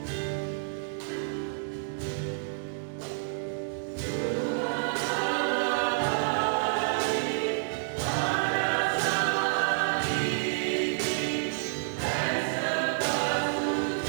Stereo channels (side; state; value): left; silent; 58 dB below the other